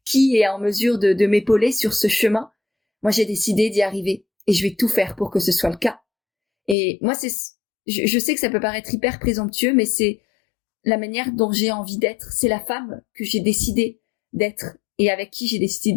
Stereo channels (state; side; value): drops out; right; at 6.8 s